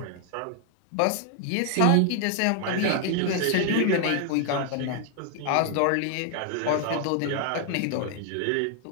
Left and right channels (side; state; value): both; different; correlation 0.00